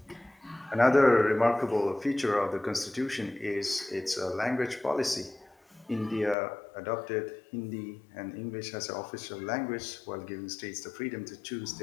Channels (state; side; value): drops out; right; at 6.4 s